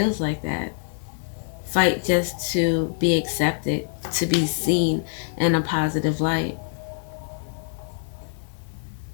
like that. Fight just to be accepted, to be seen in a positive light.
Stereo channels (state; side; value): silent; right; 59 dB below the other